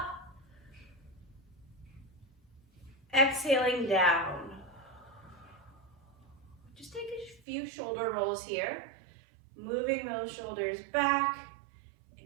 Exhaling down. Just take a few shoulder rolls here. Moving those shoulders back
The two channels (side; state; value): left; drops out; at 7.4 s